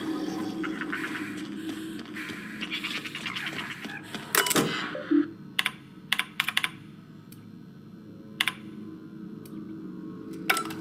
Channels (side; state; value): both; identical; correlation 1.00